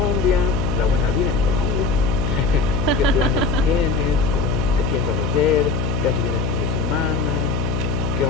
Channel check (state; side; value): noise; left; hum, 1 dB below the sound